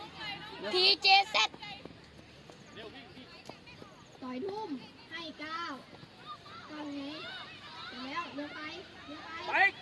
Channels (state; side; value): identical; both; correlation 1.00